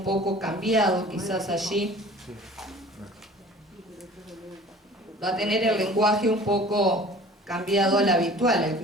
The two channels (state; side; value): normal; both; correlation 0.46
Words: poco cambiado, quizás allí. Va a tener el lenguaje un poco cambiado al habitual, al que